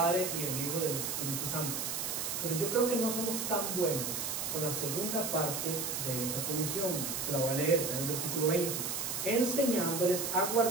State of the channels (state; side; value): noise; right; hiss, 2 dB below the sound